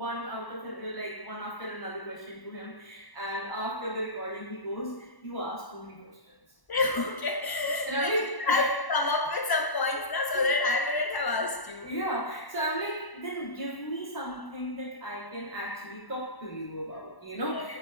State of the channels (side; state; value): right; late; 1.0 ms